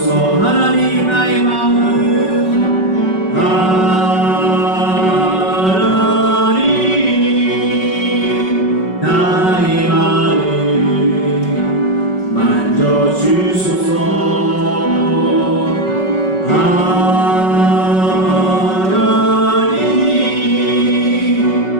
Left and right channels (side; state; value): right; late; 5.3 ms